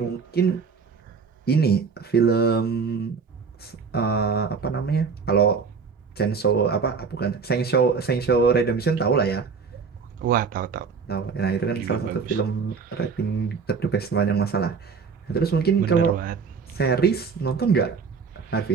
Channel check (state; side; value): quieter; left; 5.4 dB